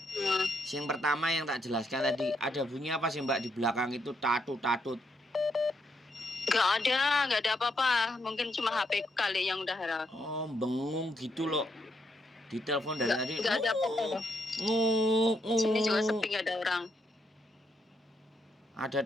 Yang pertama yang tak jelaskan tadi, ada bunyi apa sih mbak di belakang itu, tatut-tatut? Gak ada apa-apa. Mungkin cuma HP kali yang udah error. Oh, bengung gitu loh. Di telepon dari tadi. Gak ada apa-apa. Sini juga sepi, gak ada orang. Ada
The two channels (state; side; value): normal; both; correlation 0.77